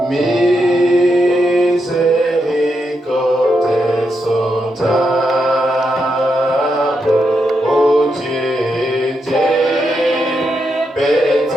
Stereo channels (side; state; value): both; normal; correlation 0.83